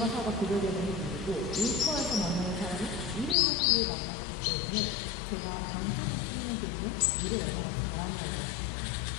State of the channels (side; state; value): right; drops out; at 3.4 s